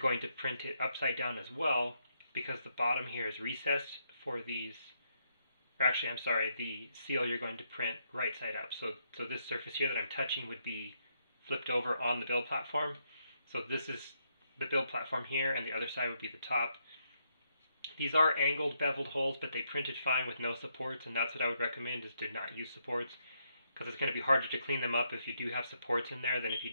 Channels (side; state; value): both; inverted; correlation -0.78